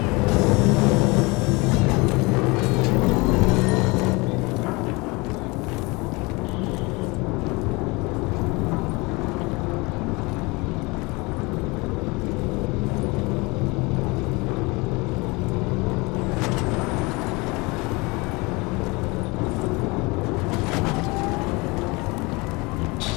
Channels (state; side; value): quieter; right; 25.6 dB